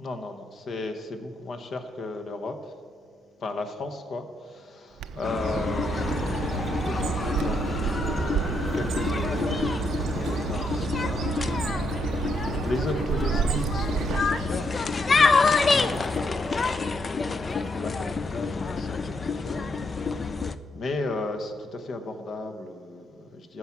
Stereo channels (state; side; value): normal; both; correlation 0.77